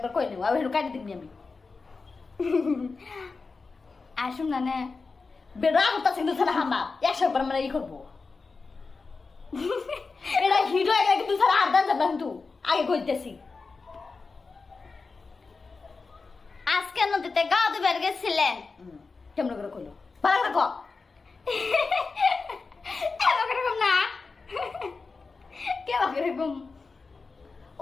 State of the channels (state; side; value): quieter; right; 4.3 dB